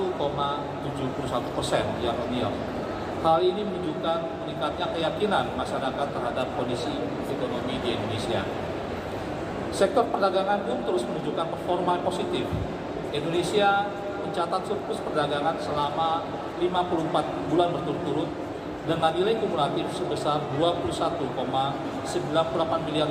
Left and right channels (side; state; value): both; identical; correlation 1.00